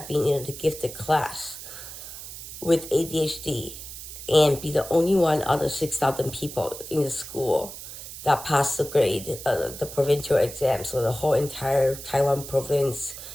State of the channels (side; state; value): right; noise; hiss, 12 dB below the sound